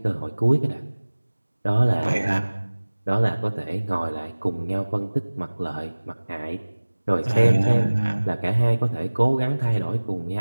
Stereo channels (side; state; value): both; inverted; correlation -1.00